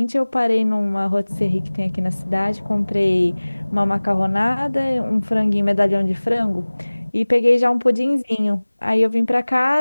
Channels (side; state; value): both; inverted; correlation -1.00